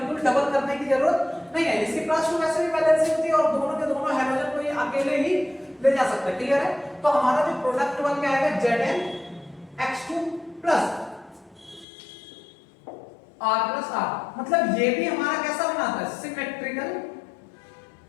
डबल करने की जरूरत नहीं है, इसकी +2 वैसे भी वैलेंसी होती है, और दोनों के दोनों हाइड्रोजन को ये अकेले ही ले जा सकता है। क्लियर है? तो हमारा जो प्रोडक्ट बन के आएगा ZnX2 प्लस R+R, मतलब ये भी हमारा कैसा बनाता है, सिमेट्रिकल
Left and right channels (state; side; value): drops out; right; at 11.9 s